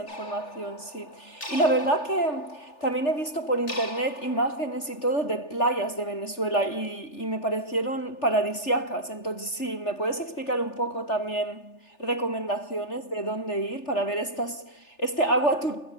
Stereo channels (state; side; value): late; right; 3.4 ms